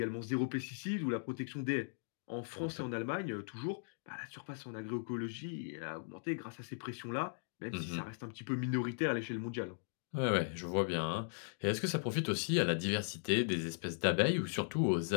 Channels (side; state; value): right; silent; digital silence